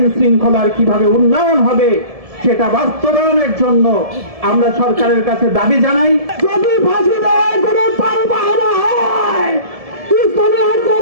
শৃঙ্খলার কিভাবে উন্নয়ন হবে সেটা বাস্তবায়নের জন্য আমরা সরকারের কাছে দাবি জানাই। যদি ফাঁসি দেওয়ার কোনো পালবাহনা হয়, ইসলামী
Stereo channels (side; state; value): left; late; 1.7 ms